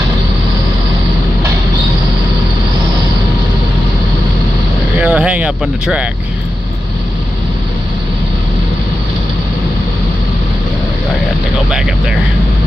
Hang up on the track. I got to go back up there.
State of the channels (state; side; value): normal; both; correlation 0.91